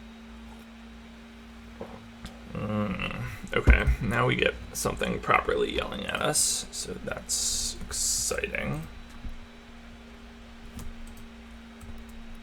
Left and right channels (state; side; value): identical; both; correlation 1.00